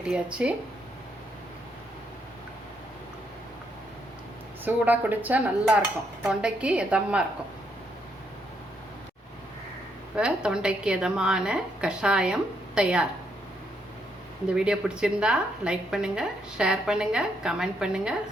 சூடாக குடித்தா நல்லாயிருக்கும், தொண்டைக்கு இதமாக இருக்கும். இப்போ தொண்டைக்கு இதமான கஷாயம் தயார். இந்த வீடியோ பிடிச்சிருந்தா லைக் பண்ணுங்கள், ஷேர் பண்ணுங்கள், கமெண்ட் பண்ணுங்கள்,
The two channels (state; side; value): normal; both; correlation 0.76